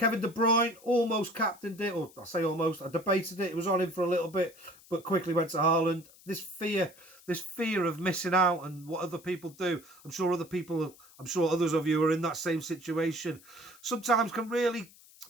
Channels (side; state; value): left; noise; hiss, 24 dB below the sound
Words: De Bruyne almost captained it. Or I say almost. I debated it. It was on him for a little bit, but quickly went to Haaland. This fear of missing out and what other people do. I'm sure others of you are in that same situation. Sometimes can really